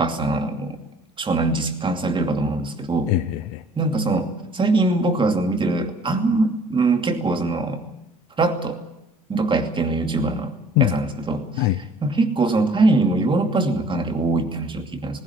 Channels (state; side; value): normal; both; correlation 0.54